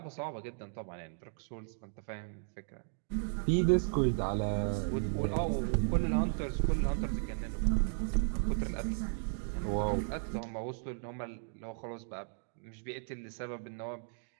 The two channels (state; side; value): silent; left; digital silence